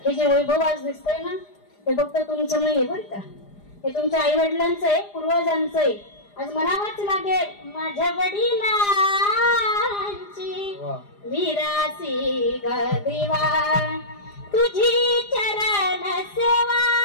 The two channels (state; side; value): late; right; 4.9 ms